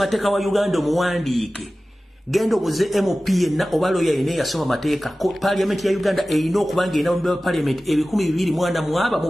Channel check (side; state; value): both; normal; correlation 0.96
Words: wa Uganda omuwandiike. Gendo buze MP na obaloya ine yasoma mateeka ko Parliament ya Uganda erina okubanga ina mu Parliament